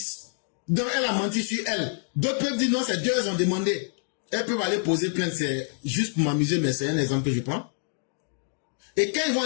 Donc elle a menti sur elle. D'autres peuvent dire non, c'est 2 elles ont demandé. Elles peuvent aller poser plainte, c'est juste pour m'amuser, mais c'est un exemple que je prends. Et quand ils vont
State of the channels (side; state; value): right; silent; 60 dB below the other